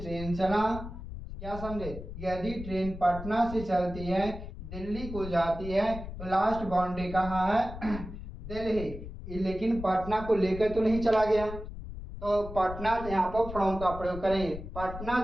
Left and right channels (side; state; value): left; noise; rumble, 10 dB below the sound